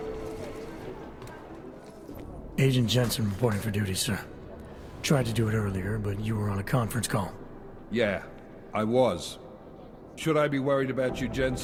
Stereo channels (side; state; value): both; identical; correlation 1.00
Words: Agent Jensen reporting for duty, sir. Tried to do it earlier, but you were on a conference call. Yeah, I was. Should I be worried about you,